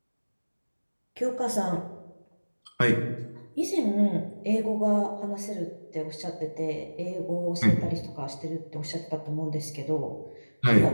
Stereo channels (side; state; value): both; inverted; correlation -1.00